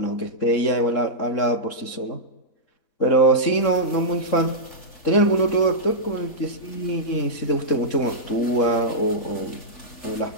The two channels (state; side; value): late; right; 3.7 ms